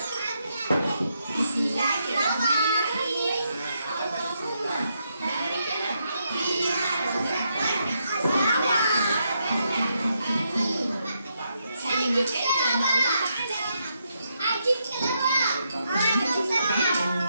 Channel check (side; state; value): both; inverted; correlation -0.80